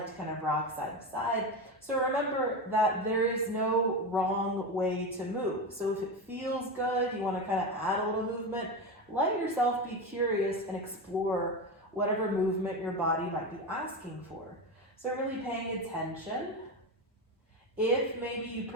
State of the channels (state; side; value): normal; both; correlation 0.19